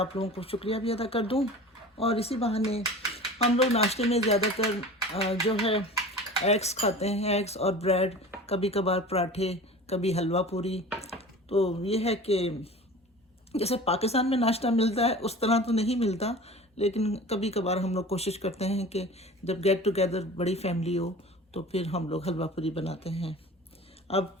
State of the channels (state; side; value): normal; both; correlation 0.38